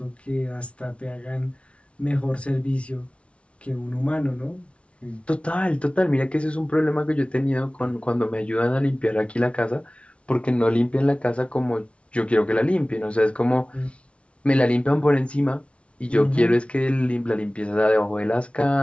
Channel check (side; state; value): right; late; 0.061 ms